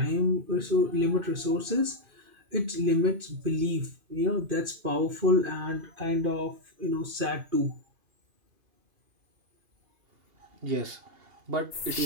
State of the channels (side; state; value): left; late; 2.5 ms